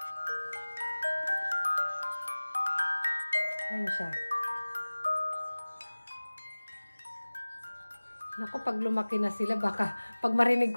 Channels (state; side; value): inverted; both; correlation -1.00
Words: Ayan siya. Naku, pag lumaki na sila, baka pag marinig